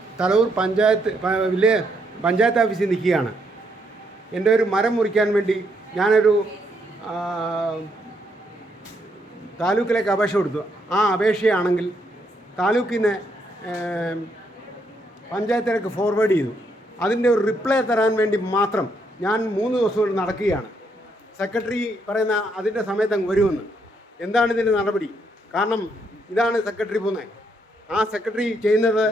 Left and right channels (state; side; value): normal; both; correlation 0.75